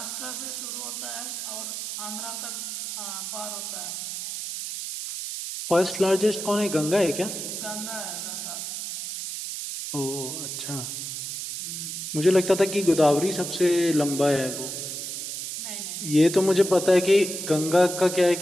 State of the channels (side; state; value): right; noise; hiss, 6 dB below the sound